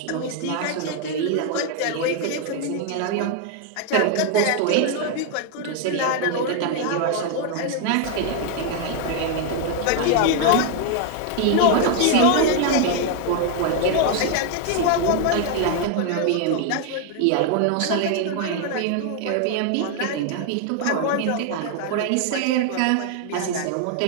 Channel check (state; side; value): different; both; correlation 0.01